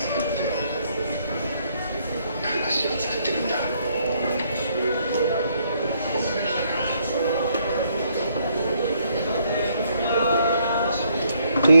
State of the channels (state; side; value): inverted; both; correlation -0.70